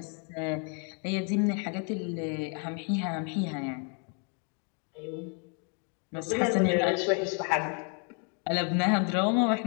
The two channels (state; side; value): quieter; right; 37.7 dB